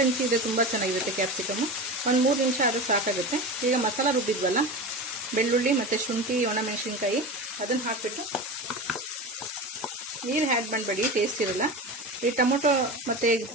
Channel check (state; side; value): normal; both; correlation 0.27